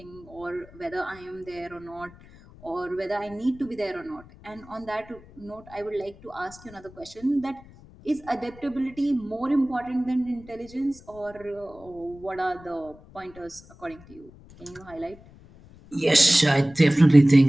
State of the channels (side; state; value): left; noise; rumble, 22 dB below the sound